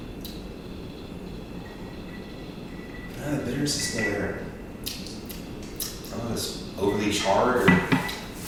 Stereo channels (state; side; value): identical; both; correlation 1.00